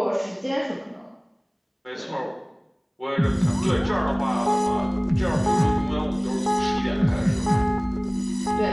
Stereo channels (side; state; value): both; identical; correlation 1.00